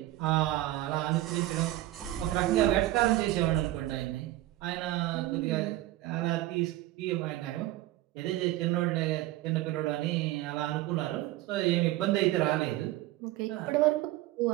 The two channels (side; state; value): left; quieter; 16.0 dB